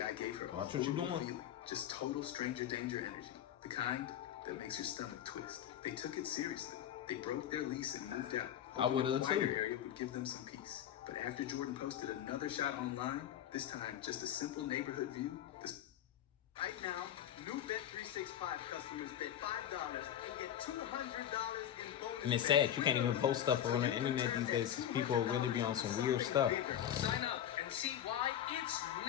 gave her watch what you're doing. Feeling, just total stranger danger energy. The kind that makes your stomach twist. They took it seriously. They broke their lease and moved out. I would have too. The area would give them some peace. But after Jordan posted another shot online, this time just a simple neighborhood view. Right now, new Bet365 customers bet $5 and get $200 in bonus. And it's sad, you can't even post stuff on the internet these days because people really be on some weird stuff. Sign up and see why it's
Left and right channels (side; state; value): right; quieter; 10.7 dB